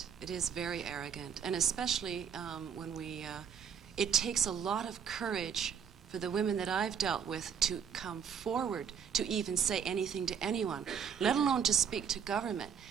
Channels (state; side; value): quieter; left; 7.5 dB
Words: It is very arrogant, and especially when it takes a lot of courage for the women that I've dealt with to come forward to even say anything to anyone, let alone to speak to government.